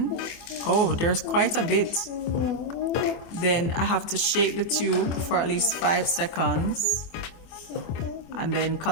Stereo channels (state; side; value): late; right; 24 ms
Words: Oh, there's quite a bit. Then I have to shake the tube for at least 5 seconds. And then